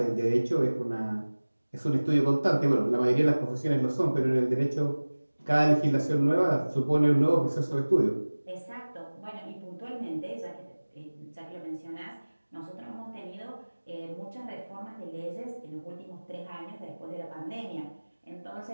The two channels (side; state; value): both; inverted; correlation -1.00